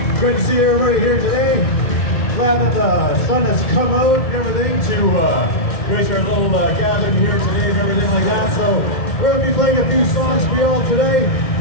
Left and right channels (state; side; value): late; right; 2.1 ms